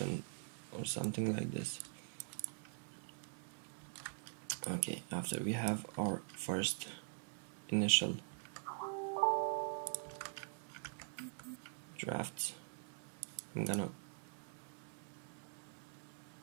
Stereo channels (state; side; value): silent; left; digital silence